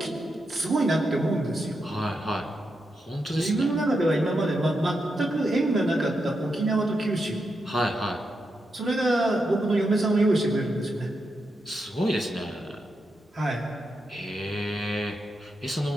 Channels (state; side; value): normal; both; correlation 0.85